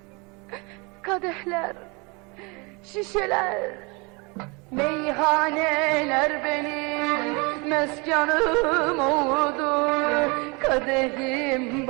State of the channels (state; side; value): quieter; left; 29.2 dB